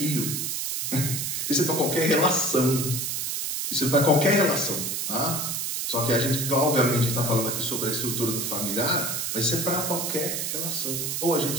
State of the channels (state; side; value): noise; right; hiss, 2 dB below the sound